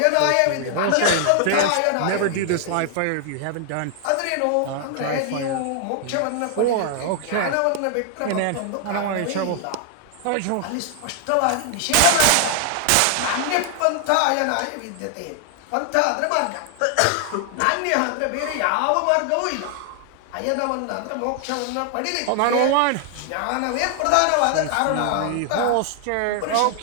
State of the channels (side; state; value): both; different; correlation 0.00